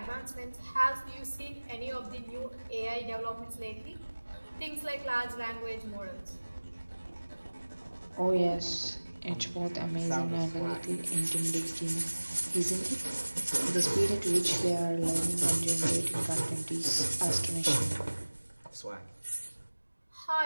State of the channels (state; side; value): inverted; both; correlation -1.00